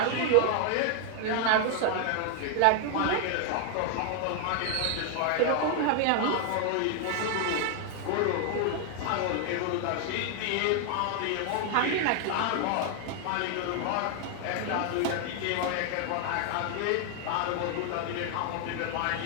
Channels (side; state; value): both; different; correlation 0.00